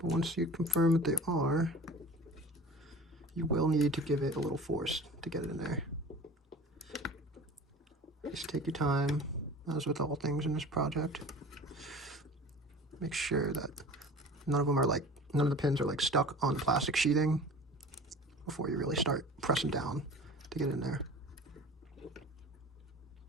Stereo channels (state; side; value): normal; both; correlation 0.40